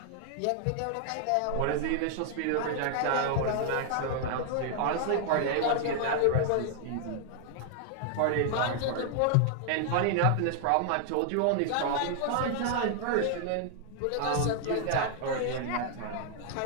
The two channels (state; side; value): different; both; correlation 0.00